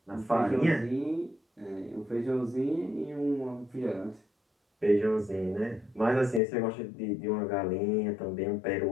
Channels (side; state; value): right; drops out; at 6.4 s